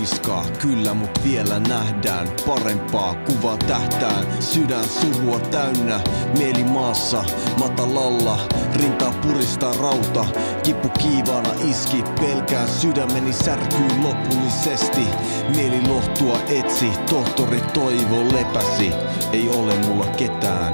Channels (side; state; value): both; inverted; correlation -1.00